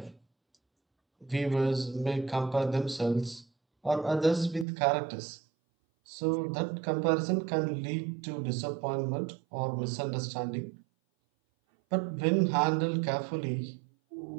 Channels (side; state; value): left; drops out; at 4.7 s